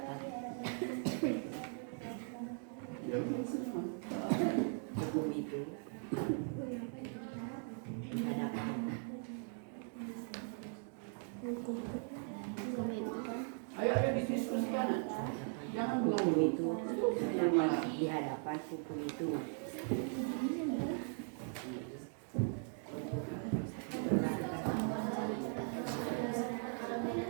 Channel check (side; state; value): left; silent; 52 dB below the other